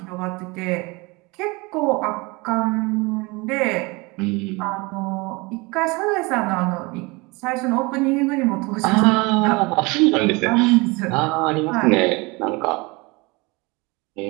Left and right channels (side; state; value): left; quieter; 25.8 dB